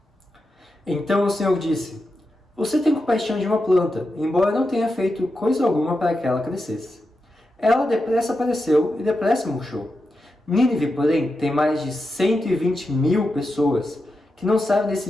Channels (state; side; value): normal; both; correlation 0.88